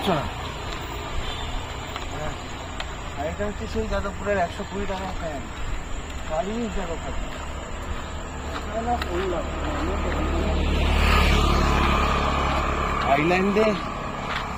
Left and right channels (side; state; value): both; identical; correlation 1.00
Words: না। আর এটা হচ্ছে সেই যাদবপুরের 120 টাকা ফ্যান, বাড়ি যাবো খাচ্ছি। আইল্যান্ডে,